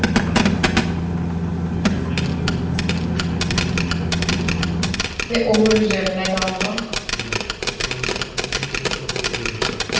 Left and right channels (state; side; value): identical; both; correlation 1.00